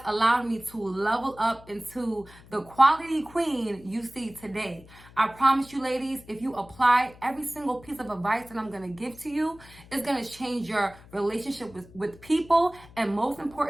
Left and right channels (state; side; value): noise; left; hum, 22 dB below the sound